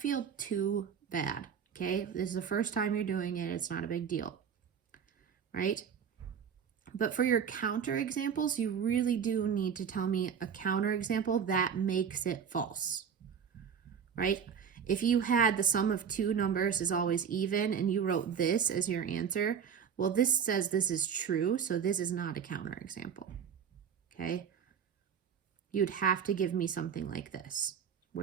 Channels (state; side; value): quieter; left; 7.5 dB